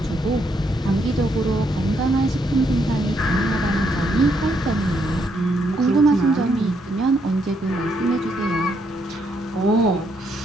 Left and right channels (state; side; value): normal; both; correlation 0.75